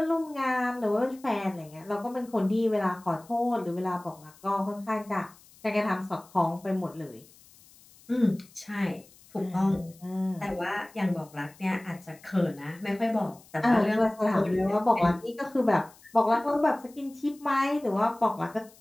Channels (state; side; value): noise; left; hiss, 25 dB below the sound